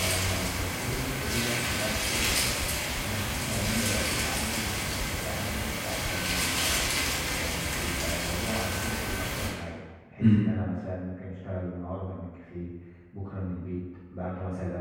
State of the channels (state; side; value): identical; both; correlation 1.00